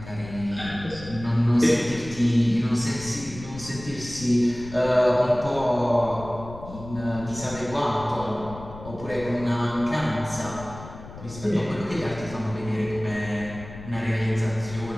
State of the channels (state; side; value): noise; left; rumble, 14 dB below the sound